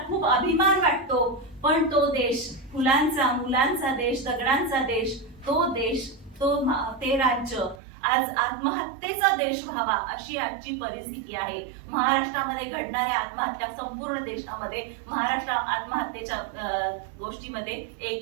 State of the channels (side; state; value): left; drops out; at 7.8 s